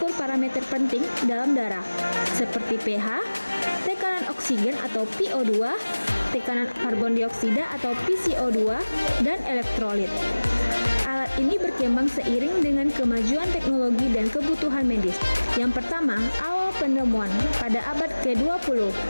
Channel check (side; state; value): both; inverted; correlation -1.00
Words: parameter penting dalam darah, seperti pH, tekanan oksigen atau PO2, tekanan karbon dioksida atau PCO2, dan elektrolit. Alat ini berkembang seiring dengan kemajuan teknologi dan kebutuhan medis. Yang pertama, awal penemuan pada abad ke-20.